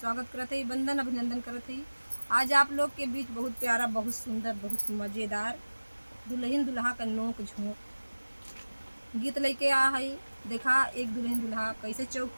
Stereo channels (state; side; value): inverted; both; correlation -1.00